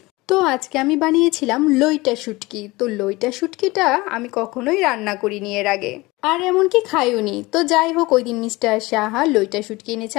তো আজকে আমি বানিয়েছিলাম লইটা শুটকি। তো লইটা শুটকিটা আমি কখনোই রান্না করিনি এর আগে, আর এমনকি খাইওনি। তো যাই হোক, ওই দিন মিস্টার সাহা লইটা শুটকি এনেছে,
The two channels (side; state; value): right; quieter; 21.8 dB